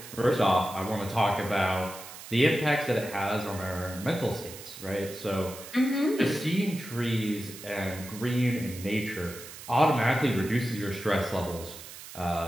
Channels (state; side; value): noise; right; hiss, 14 dB below the sound